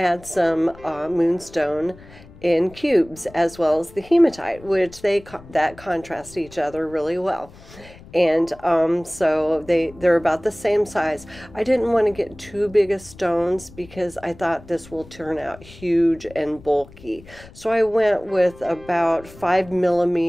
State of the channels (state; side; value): noise; left; rumble, 21 dB below the sound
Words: some moonstone in cubes as well as the hematite, which that contrast each other really well. And so they're about the same size. I didn't want to get too big of stones because I thought this will turn out huge and bulky. So I went with about